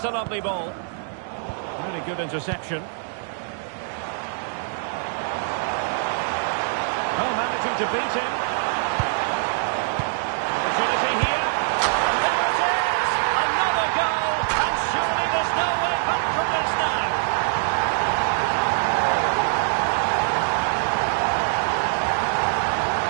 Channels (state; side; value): silent; left; digital silence